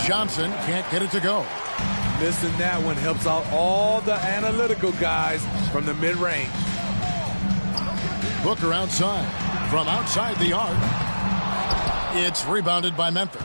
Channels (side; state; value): both; inverted; correlation -1.00